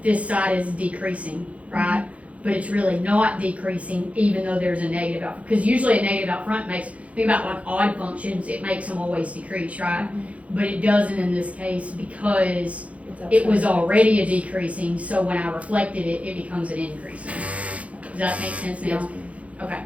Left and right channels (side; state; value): left; late; 0.065 ms